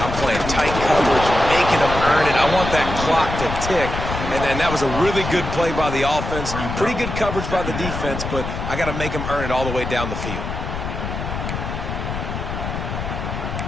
I'm playing tight coverage, making them earn it. I want that clock to tick. And then that was a really good play by the offense. Pretty good coverage by the defense, but I got to make them earn it all the way down the field.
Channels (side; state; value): left; noise; rumble, 5 dB below the sound